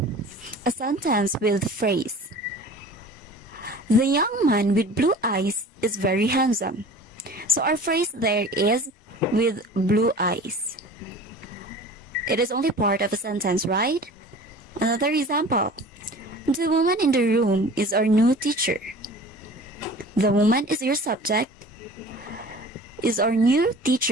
A sentence with phrase. The young man with blue eyes is very handsome. So our phrase there is with blue eyes. It is only part of a sentence, right? Another example. The woman in the room is our new teacher. The woman is your subject. Is our new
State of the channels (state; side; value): normal; both; correlation 0.42